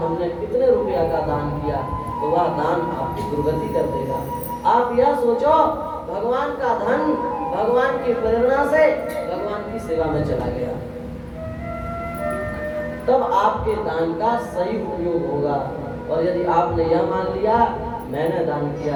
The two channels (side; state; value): both; identical; correlation 1.00